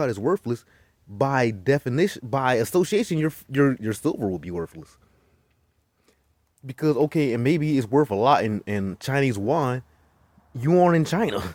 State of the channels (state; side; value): identical; both; correlation 1.00